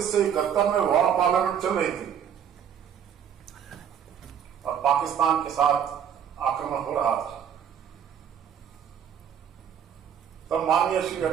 में वॉर पार्लियामेंट चल रही थी और पाकिस्तान के साथ आक्रमण हो रहा था, तब माननीय श्री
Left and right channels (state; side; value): quieter; left; 8.5 dB